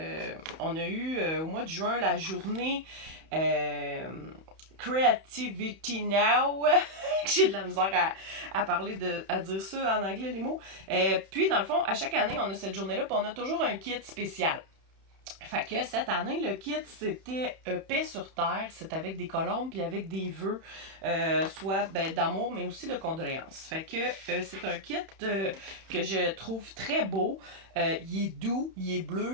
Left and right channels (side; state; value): left; late; 31 ms